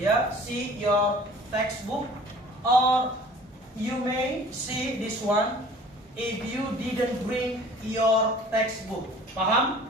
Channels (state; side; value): normal; both; correlation 0.48